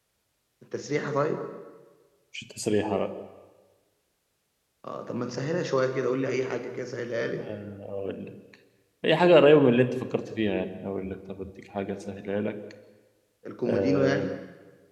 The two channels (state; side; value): identical; both; correlation 1.00